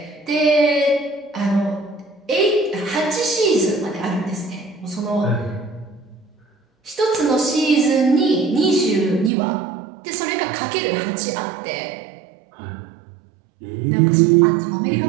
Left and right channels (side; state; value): left; drops out; at 9.3 s